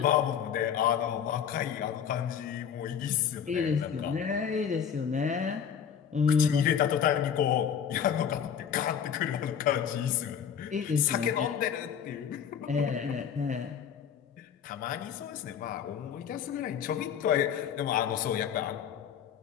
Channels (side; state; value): right; quieter; 8.2 dB